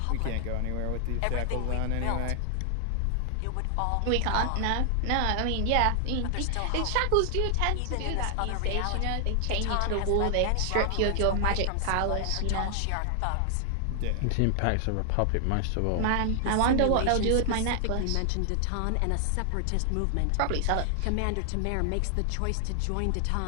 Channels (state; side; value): different; both; correlation 0.00